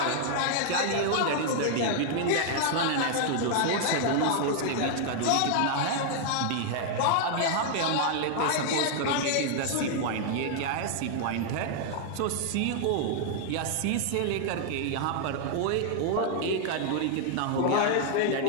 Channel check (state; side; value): different; both; correlation 0.00